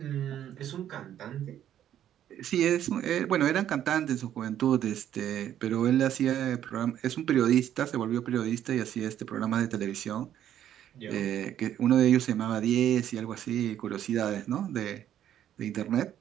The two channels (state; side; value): quieter; left; 10.9 dB